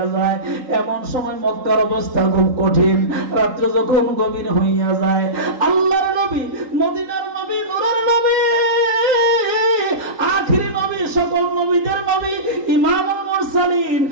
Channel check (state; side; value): late; left; 3.8 ms